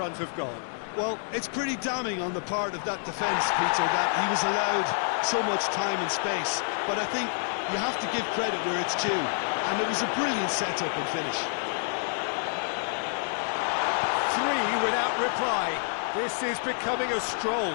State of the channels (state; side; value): silent; right; digital silence